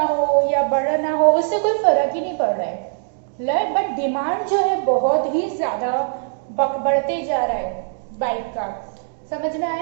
हो या बढ़ना हो उससे कोई फर्क ही नहीं पड़ रहा है, बट डिमांड जो है बहुत ही ज्यादा बढ़ते जा रहा है बाइक का. समझ में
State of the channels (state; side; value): silent; left; digital silence